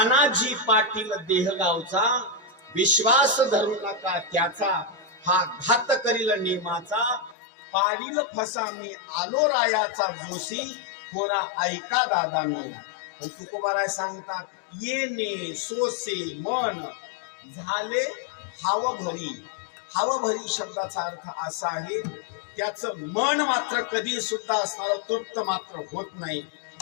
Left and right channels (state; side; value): drops out; right; at 7.4 s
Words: पाटील देह गावचा विश्वास धरू नका त्याचा, हा घात करील नेमाचा पाडील फसा मी आलो रायाचा जोशी पोरा ऐका दादांनो. पण तुकोबाराय सांगतात येणे सोसे मन झाले हावभरी. हावभरी शब्दाचा अर्थ असा आहे त्याचं मन मात्र कधी सुद्धा असणार तृप्त मात्र होत नाही.